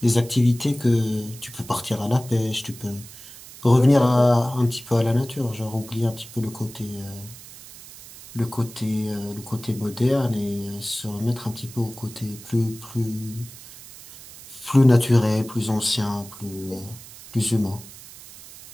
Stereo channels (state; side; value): noise; right; hiss, 17 dB below the sound